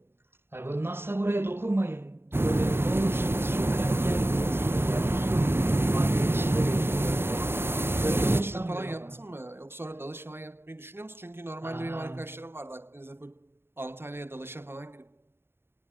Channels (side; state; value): left; late; 0.11 ms